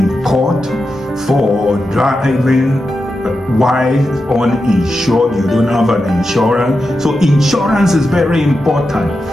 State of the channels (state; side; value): normal; both; correlation 0.89